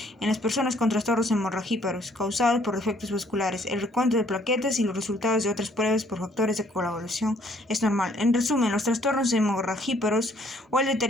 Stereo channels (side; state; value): both; normal; correlation 0.63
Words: en las personas con trastornos hemorragíparos causados por defectos vasculares. El recuento de plaquetas y los resultados de otras pruebas por factores de coagulación es normal. En resumen, los trastornos hemorragíparos o el